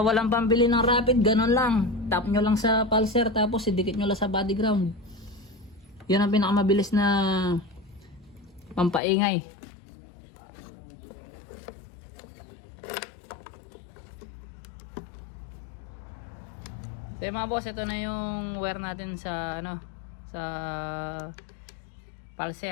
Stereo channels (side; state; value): right; drops out; at 9.0 s